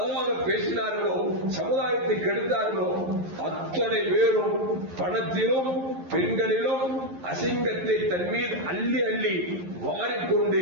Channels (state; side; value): late; left; 11 ms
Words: பேசினார்களோ சமுதாயத்தை கெடுத்தார்களோ அத்தனை பேரும் பணத்திலும் பெண்களிலும் அசிங்கத்தை தன் மீது அள்ளி அள்ளி வாரிக்கொண்டு